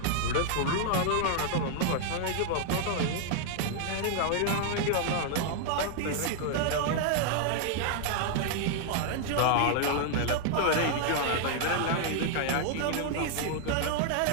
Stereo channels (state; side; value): different; both; correlation 0.00